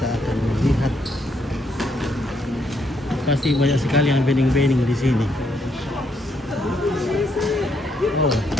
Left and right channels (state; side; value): normal; both; correlation 0.74